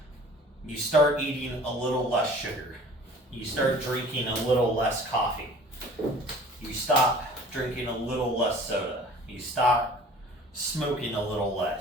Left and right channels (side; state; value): both; normal; correlation 0.47